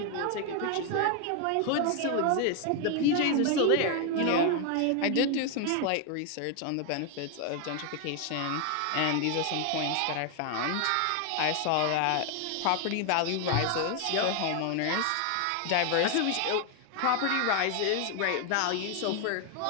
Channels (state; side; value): different; both; correlation 0.01